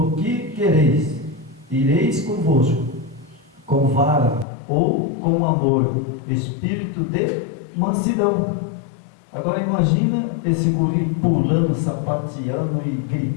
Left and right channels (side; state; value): right; drops out; at 4.5 s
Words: que quereis? Ireis convosco com vara ou com amor, espírito de mansidão. Agora imagina esse guri pulando, sapateando e